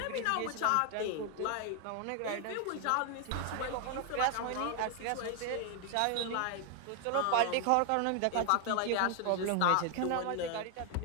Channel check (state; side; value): different; both; correlation 0.00